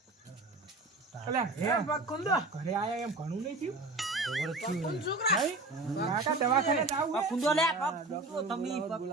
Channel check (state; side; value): quieter; left; 3.2 dB